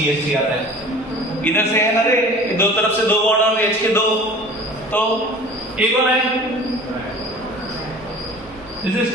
आता है। इधर से है ना रे, दो तरफ से दो बॉन्ड और H के दो, तो ये कौन है? This is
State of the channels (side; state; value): both; normal; correlation 0.43